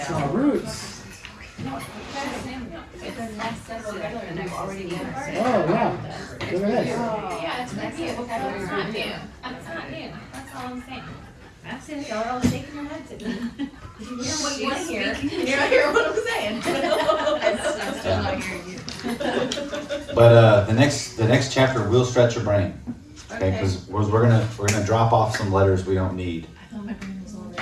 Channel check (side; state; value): both; identical; correlation 1.00